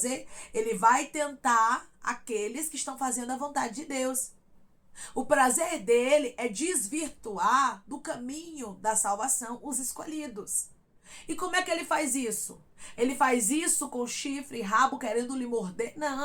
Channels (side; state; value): both; identical; correlation 1.00